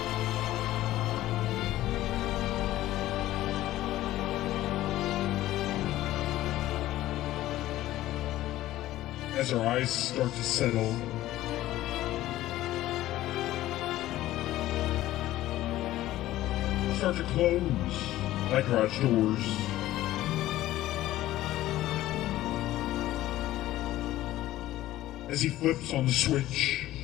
As our eyes start to settle, start to close like garage doors. As he flips on the switch,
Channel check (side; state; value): right; quieter; 15.0 dB